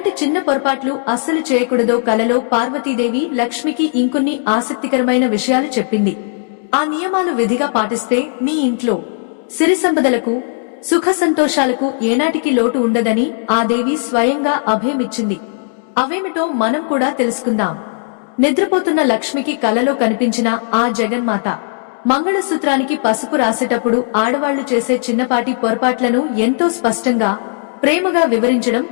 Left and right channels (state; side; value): silent; right; 68 dB below the other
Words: చిన్న పొరపాట్లు అస్సలు చేయకూడదో కలలో పార్వతీదేవి లక్ష్మికి ఇంకొన్ని ఆసక్తికరమైన విషయాలు చెప్పింది. ఆ నియమాలు విధిగా పాటిస్తే మీ ఇంట్లో సిరి సంపదలకు, సుఖ సంతోషాలకు ఏనాటికి లోటు ఉండదని ఆ దేవి స్వయంగా అభయమిచ్చింది. అవేమిటో మనం కూడా తెలుసుకుందాం. నిద్రపోతున్న లక్ష్మికి కలలో కనిపించిన ఆ జగన్మాత మంగళసూత్రానికి పసుపు రాసేటప్పుడు ఆడవాళ్లు చేసే చిన్నపాటి పొరపాట్లను ఎంతో స్పష్టంగా, ప్రేమగా వివరించడం